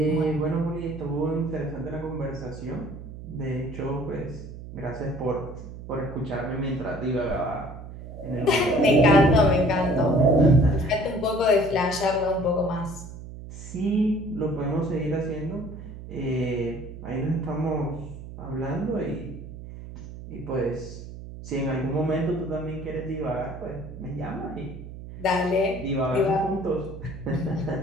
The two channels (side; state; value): right; noise; hum, 12 dB below the sound